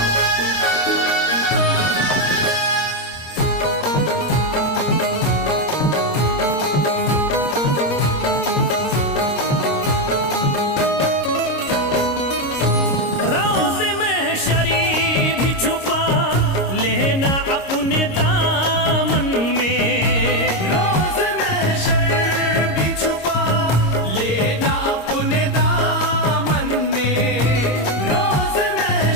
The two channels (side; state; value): right; late; 26 ms